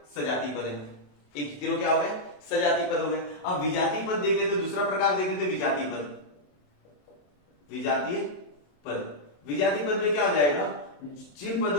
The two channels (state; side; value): late; right; 27 ms